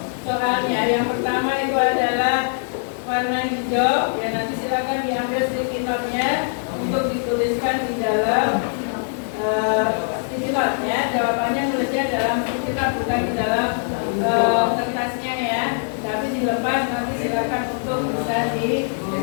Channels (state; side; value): silent; right; digital silence